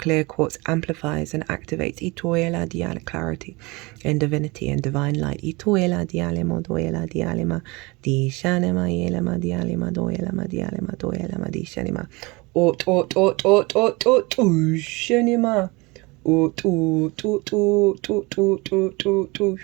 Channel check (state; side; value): quieter; left; 25.1 dB